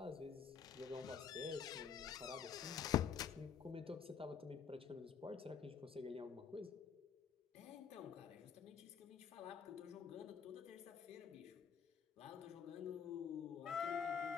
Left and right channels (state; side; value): quieter; right; 7.2 dB